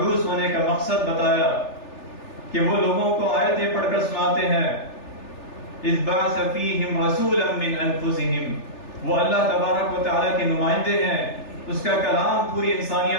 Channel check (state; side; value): late; right; 3.4 ms